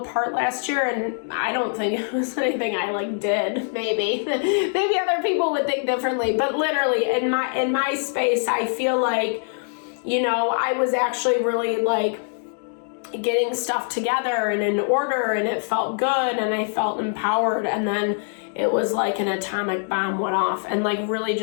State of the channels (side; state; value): right; silent; 56 dB below the other